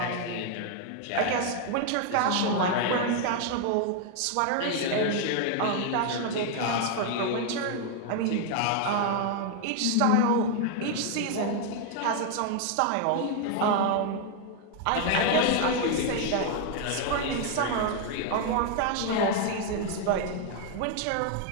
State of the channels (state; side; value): different; both; correlation 0.00